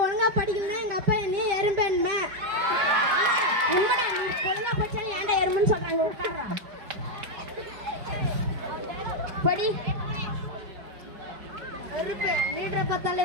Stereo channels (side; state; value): left; late; 4.7 ms